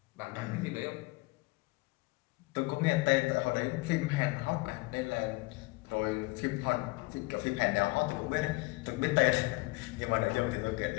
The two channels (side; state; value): right; quieter; 24.2 dB